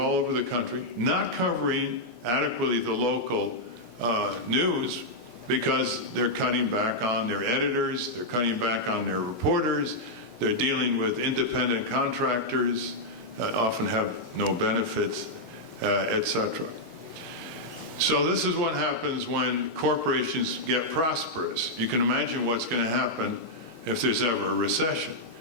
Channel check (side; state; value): left; late; 5.7 ms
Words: over the country, not covering adequately the local news because they're cutting back on their editors, they're cutting back on their reporters, they're dealing with independent contractors that often have no benefits, etc. So this is what happens when corporations get prosperous. You can imagine what's going to happen if there's ever a recession